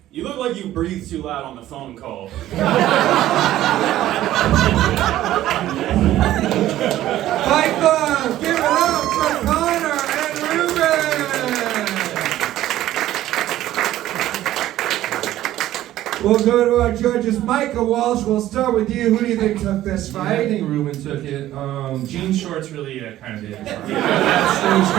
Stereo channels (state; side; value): quieter; left; 13.9 dB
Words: You look like you breathe too loud on the phone call. Fight Club, give it up for Conor and Reuben! We'll go to our judges. Micah, Walsh, we'll start with you. Who do you think took this I fight? think Reuben took it. Jean shorts really kind of did. That was